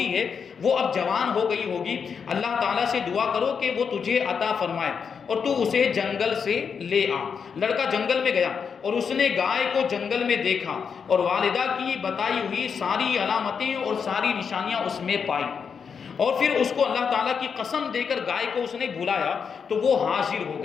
ہے، وہ اب جوان ہو گئی ہوگی، اللہ تعالیٰ سے دعا کرو کہ وہ تجھے عطا فرمائے اور تو اسے جنگل سے لے آ۔ لڑکا جنگل میں گیا اور اس نے گائے کو جنگل میں دیکھا اور والدہ کی بتائی ہوئی ساری علامتیں اور ساری نشانیاں اس میں پائی، اور پھر اس کو اللہ تعالیٰ کی قسم دے کر گائے کو اس نے بلایا تو وہ حاضر ہو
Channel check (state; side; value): quieter; right; 6.4 dB